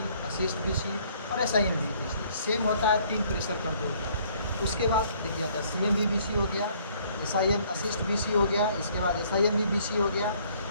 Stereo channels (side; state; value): both; inverted; correlation -0.61